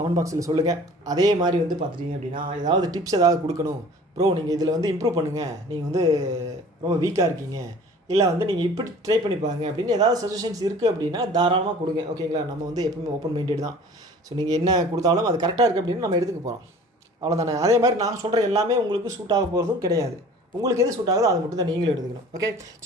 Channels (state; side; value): normal; both; correlation 0.46